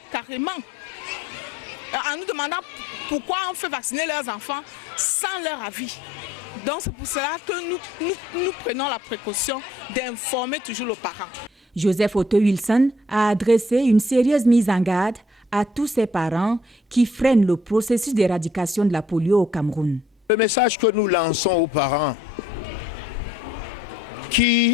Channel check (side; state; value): both; normal; correlation 0.64